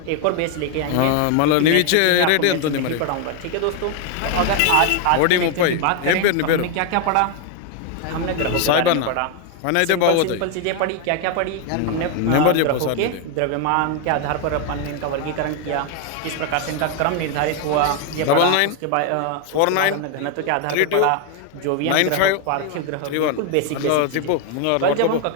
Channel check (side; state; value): both; different; correlation 0.01